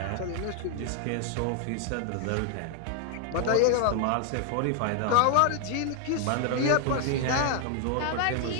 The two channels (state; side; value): different; both; correlation 0.00